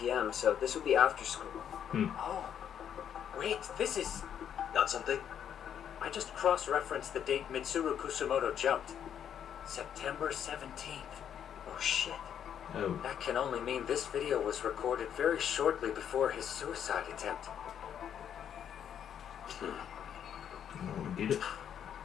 so this would be after school. Oh, wait, this is... Got something? I just cross-referenced the date Mitsuru Kusamoto jumped. September 17th. Oh shit. Oh. That can only mean this video was recorded very shortly before his suicide attempt. Oh, did it?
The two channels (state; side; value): quieter; right; 9.0 dB